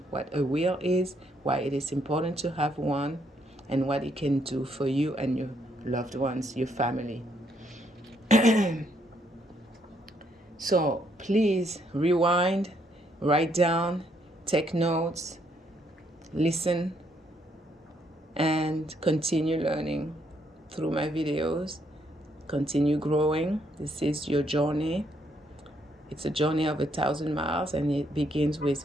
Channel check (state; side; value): normal; both; correlation 0.72